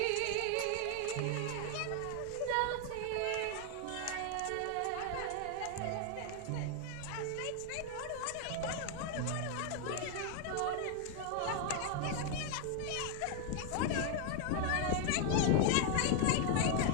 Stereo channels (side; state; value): both; different; correlation 0.00